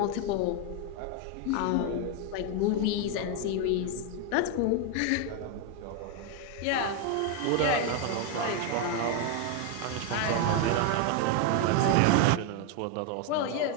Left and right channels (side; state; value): both; different; correlation 0.01